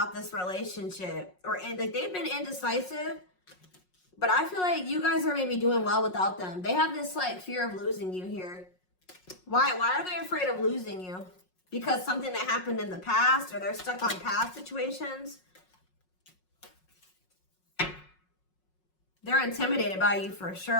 this relationship. And like they've been indecisive. But I feel like you guys are maybe doing well without them. They have this like fear of losing you here. Why are they afraid of losing you? Because something that happened in the past, or they're stuck on past situations? They're intimidated by you for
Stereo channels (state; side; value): late; right; 5.5 ms